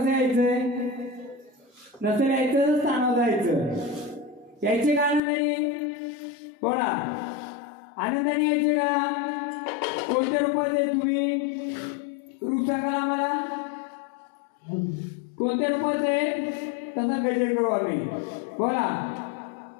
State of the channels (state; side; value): drops out; right; at 5.2 s